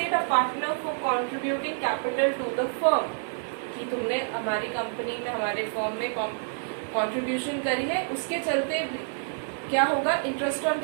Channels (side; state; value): left; silent; 56 dB below the other